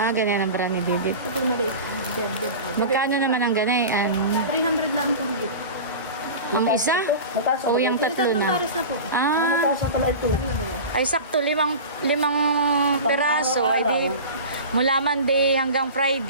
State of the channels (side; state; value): both; inverted; correlation -0.32